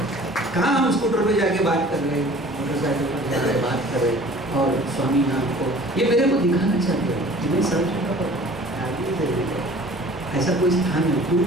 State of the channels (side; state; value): both; normal; correlation 0.47